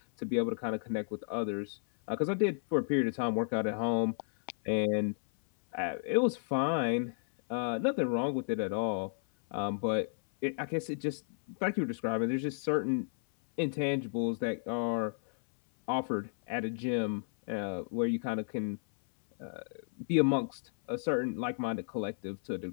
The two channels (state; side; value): silent; right; 56 dB below the other